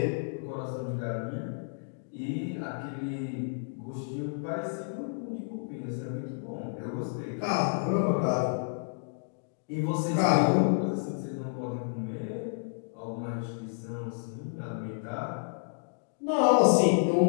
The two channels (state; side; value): silent; right; digital silence